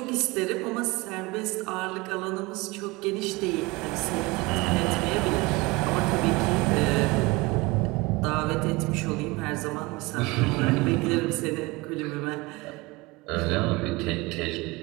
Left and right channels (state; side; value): quieter; left; 23.6 dB